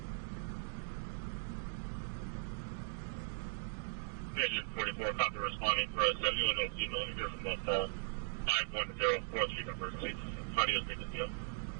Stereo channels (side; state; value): left; silent; digital silence